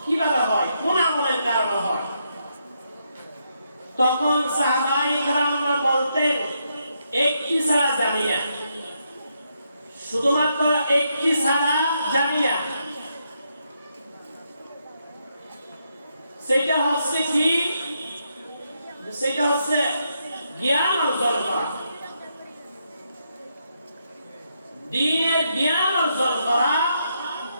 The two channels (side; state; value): both; inverted; correlation -0.79